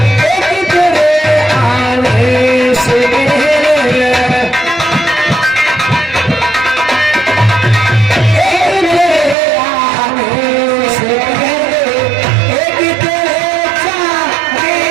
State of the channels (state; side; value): drops out; left; at 9.3 s